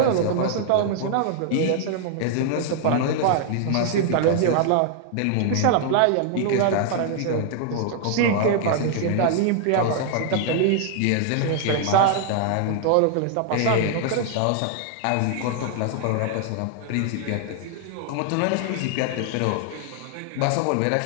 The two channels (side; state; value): both; different; correlation 0.00